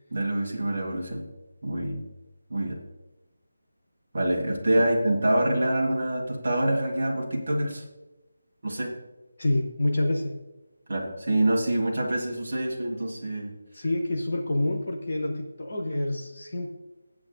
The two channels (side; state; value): both; inverted; correlation -0.94